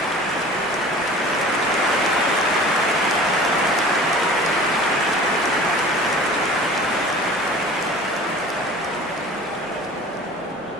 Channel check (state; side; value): normal; both; correlation 0.43